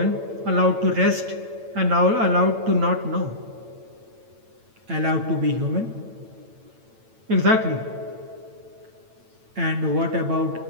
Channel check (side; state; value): left; late; 8.9 ms